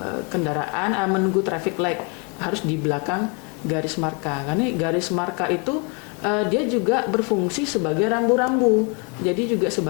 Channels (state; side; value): quieter; right; 34.0 dB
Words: kendaraan, menunggu traffic light harus di belakang garis marka. Karena garis marka itu dia juga berfungsi sebagai rambu-rambu. Jadi juga